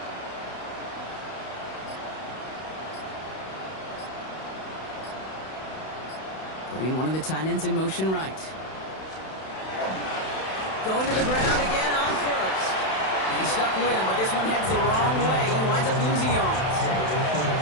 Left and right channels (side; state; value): right; late; 32 ms